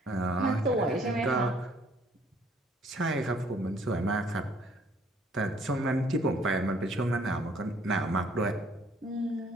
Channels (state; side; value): normal; both; correlation 0.61